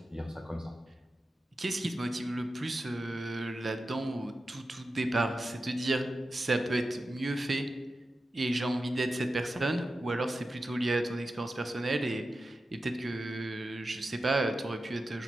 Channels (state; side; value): normal; both; correlation 0.92